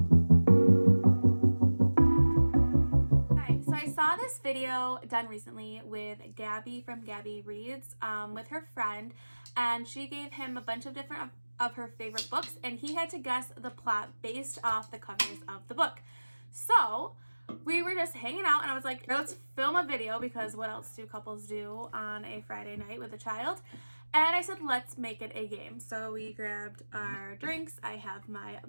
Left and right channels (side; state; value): both; inverted; correlation -1.00